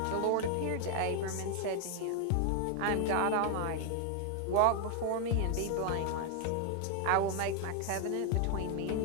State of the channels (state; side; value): different; both; correlation 0.00